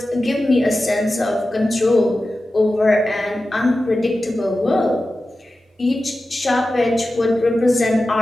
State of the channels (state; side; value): normal; both; correlation 0.94